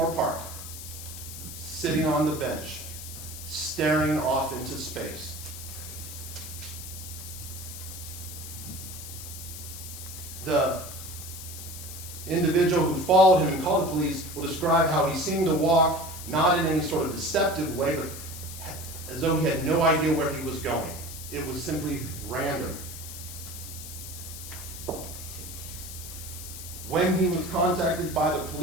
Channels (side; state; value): left; noise; hiss, 11 dB below the sound